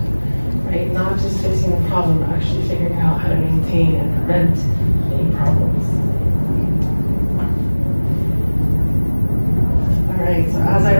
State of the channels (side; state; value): both; inverted; correlation -1.00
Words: right? Not just fixing the problem, but actually figuring out how to maintain and prevent any problems. All right, so as I